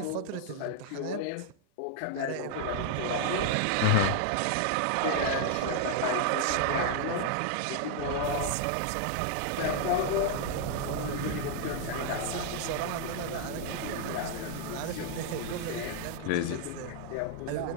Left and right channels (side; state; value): both; different; correlation 0.00